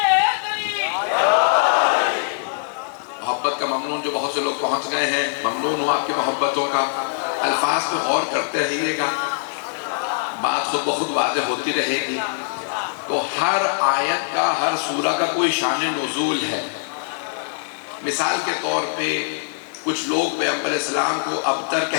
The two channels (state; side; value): silent; right; digital silence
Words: محبت کا ممنون جو بہت سے لوگ پہنچ گئے ہیں, ممنون ہوں آپ کی محبتوں کا. الفاظ پہ غور کرتے رہیے گا, بات خود بخود واضح ہوتی رہے گی. تو ہر آیت کا ہر سورہ کا کوئی شان نزول ہے. مثال کے طور پہ کچھ لوگ پیغمبر اسلام کو ابتر